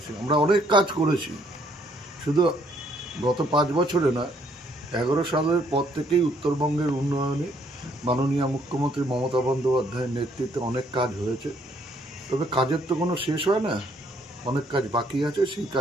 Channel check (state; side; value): normal; both; correlation 0.67